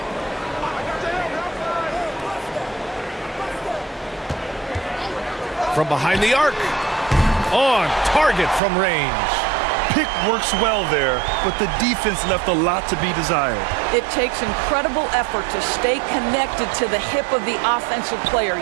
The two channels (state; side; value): drops out; left; at 8.6 s